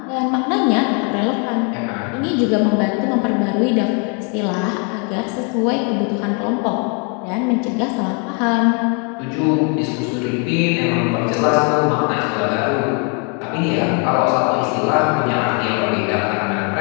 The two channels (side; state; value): right; quieter; 36.6 dB